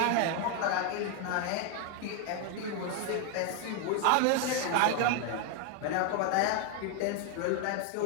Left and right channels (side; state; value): both; different; correlation 0.01